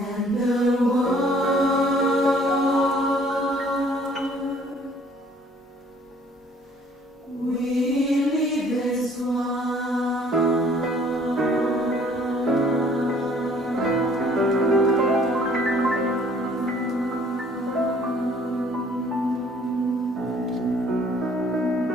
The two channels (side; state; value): both; normal; correlation 0.58